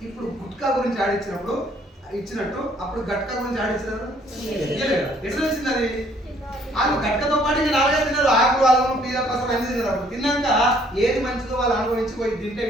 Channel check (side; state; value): both; normal; correlation 0.62